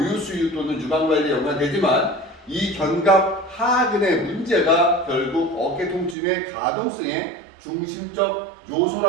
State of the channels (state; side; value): drops out; left; at 6.2 s